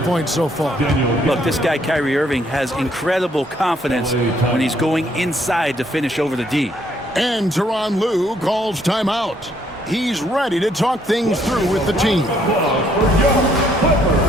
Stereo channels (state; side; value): normal; both; correlation 0.68